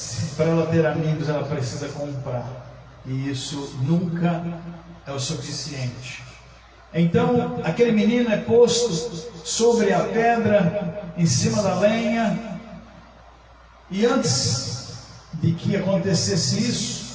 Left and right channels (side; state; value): both; identical; correlation 1.00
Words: Para ela ter amigos, ela precisa comprar. E isso nunca é o suficiente. Então, aquele menino é posto sobre a pedra, em cima da lenha. E antes de que acontecesse